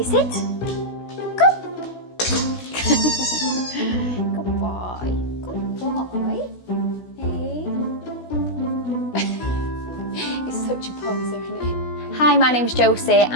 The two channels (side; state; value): right; late; 16 ms